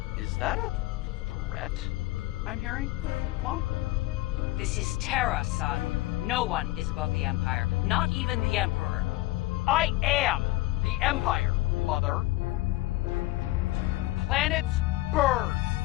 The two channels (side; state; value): right; quieter; 18.0 dB